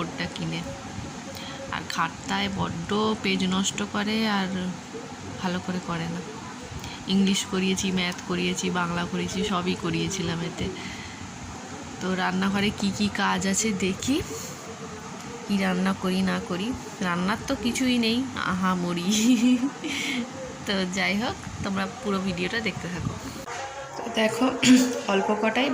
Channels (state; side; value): identical; both; correlation 1.00